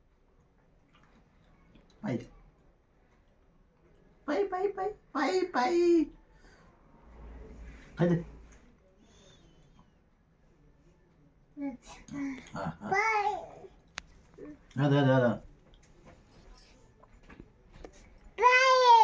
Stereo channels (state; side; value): identical; both; correlation 1.00